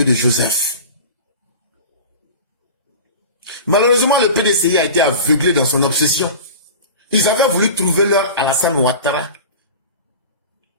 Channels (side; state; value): both; inverted; correlation -0.34